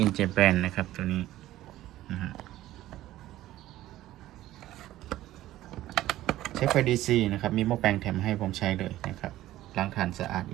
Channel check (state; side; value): quieter; left; 14.8 dB